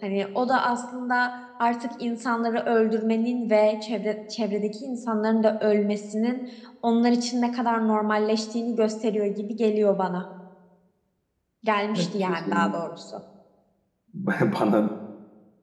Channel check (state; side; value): identical; both; correlation 1.00